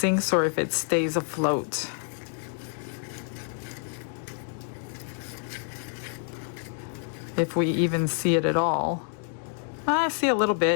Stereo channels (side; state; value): right; silent; 55 dB below the other